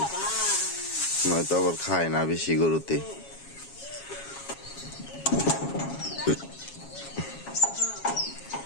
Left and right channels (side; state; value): right; late; 7.3 ms